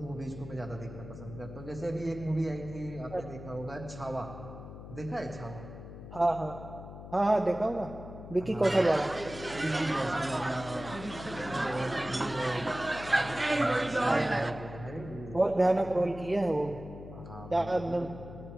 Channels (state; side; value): noise; left; hum, 12 dB below the sound